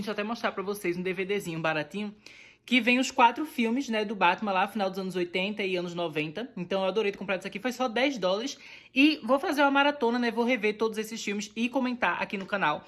eu até mostrar pra vocês um DVDzinho baratinho, que vem os 4 filmes, né, do Batman lá, final dos anos 80 e anos 90. Então eu adorei ter comprado isso aqui, foi só $10. E vou fazer uma maratona, né, vou rever todos esses filmes e comentar aqui no canal,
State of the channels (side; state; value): both; identical; correlation 1.00